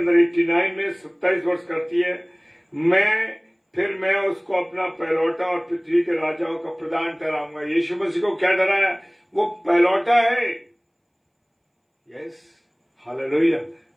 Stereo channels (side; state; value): both; identical; correlation 1.00